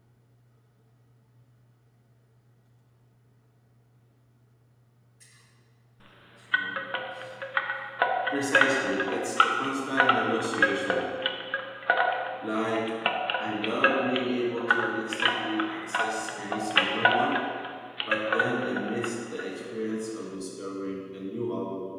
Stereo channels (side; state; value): both; identical; correlation 1.00